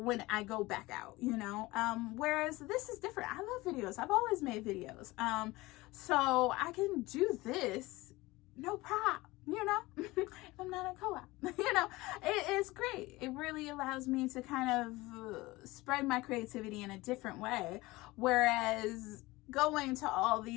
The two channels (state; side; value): quieter; right; 20.6 dB